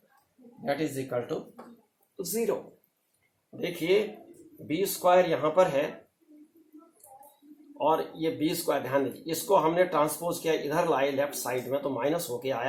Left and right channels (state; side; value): identical; both; correlation 1.00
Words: that is equal to 0. देखिए B square यहाँ पर है और ये B square, ध्यान दीजिए, इसको हमने ट्रांसपोज किया, इधर लाए लेफ्ट साइड में तो माइनस होके